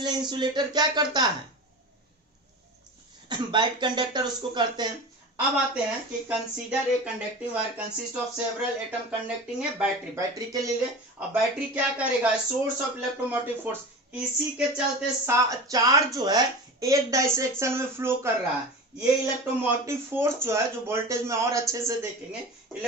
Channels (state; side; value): normal; both; correlation 0.31